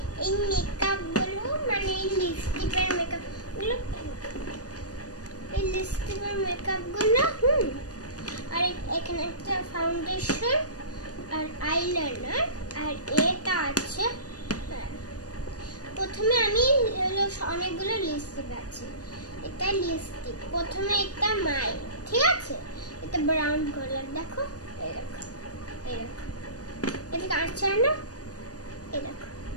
এই মেকআপগুলো মানে লিপস্টিকের মেকআপগুলো আর এখানে একটা ফাউন্ডেশন আর আইলাইনার আর এটা আছে। প্রথমে আমি অনেকগুলো লিপস্টিক আছে। এটা লিপস্টিক প্রথমে একটা মাই, ঠিক আছে? এটা ব্রাউন কালার, দেখো এই দেখো এটা কাঁচা না, এই দেখো।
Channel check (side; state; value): right; late; 0.68 ms